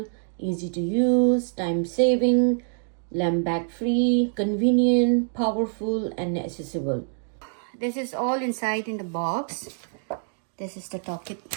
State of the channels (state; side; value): silent; left; digital silence